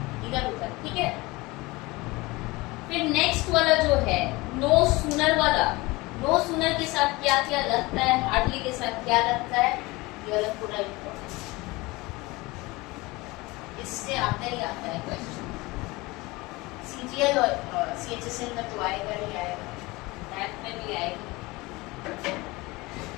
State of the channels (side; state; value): right; quieter; 22.4 dB